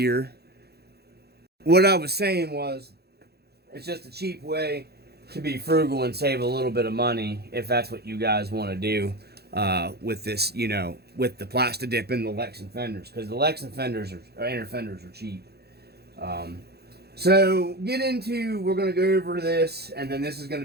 What I was saying was it's just a cheap way to be frugal and save a little bit of money if that's what you guys want to do with this, you know, with the Plastidip and the Lexan fenders, because the Lexan fenders or inner fenders are cheap. So we're going to go over this, and then this is going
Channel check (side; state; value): left; late; 0.47 ms